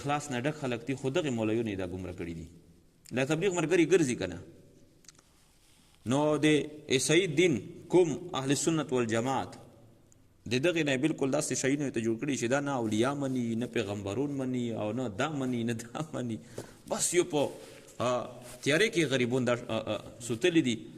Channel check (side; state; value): both; identical; correlation 1.00